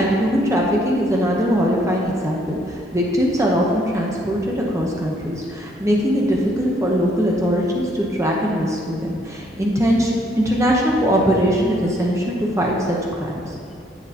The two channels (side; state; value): both; normal; correlation 0.68